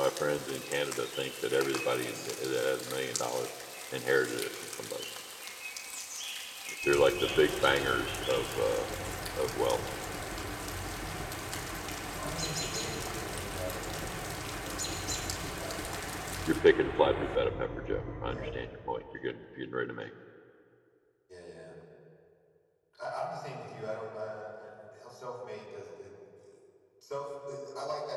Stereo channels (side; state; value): both; identical; correlation 1.00